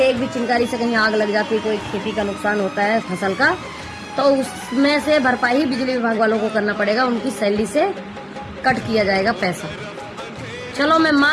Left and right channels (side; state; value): both; identical; correlation 1.00